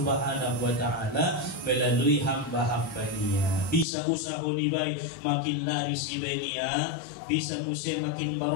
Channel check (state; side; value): drops out; right; at 3.9 s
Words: wa Ta'ala melalui hamba-hambanya. Bisa usaha ni bay makin laris ibe niya. Bisa musya makin